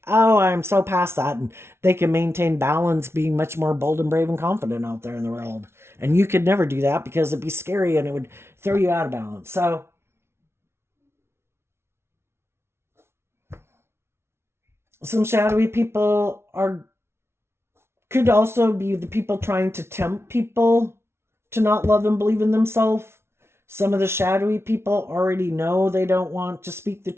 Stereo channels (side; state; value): left; late; 0.12 ms